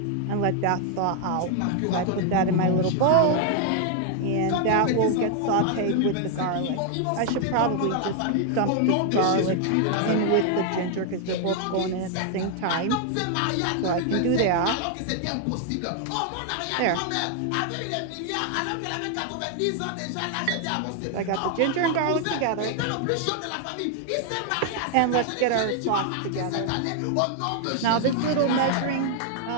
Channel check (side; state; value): both; different; correlation 0.00